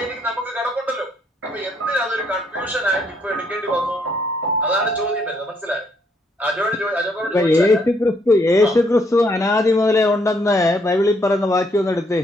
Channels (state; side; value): normal; both; correlation 0.71